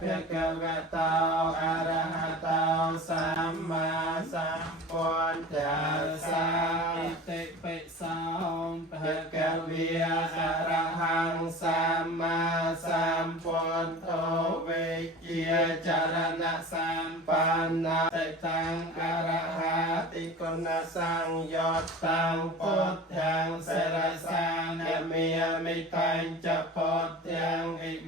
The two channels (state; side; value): normal; both; correlation 0.37